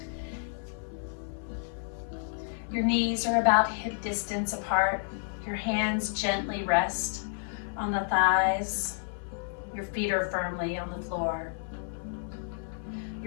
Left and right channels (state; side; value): silent; right; 57 dB below the other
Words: Your knees are about hip distance apart. Your hands gently rest on the thighs. Your feet are firmly on the floor.